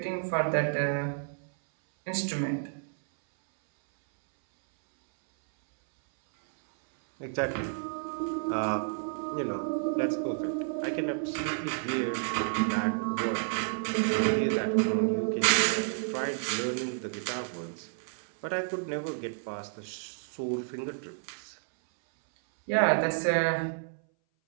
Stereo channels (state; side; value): silent; left; 58 dB below the other